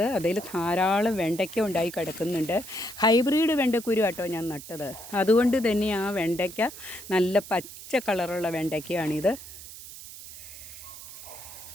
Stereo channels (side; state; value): right; noise; hiss, 14 dB below the sound